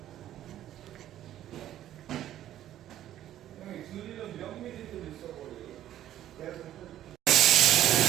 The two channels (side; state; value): left; quieter; 12.3 dB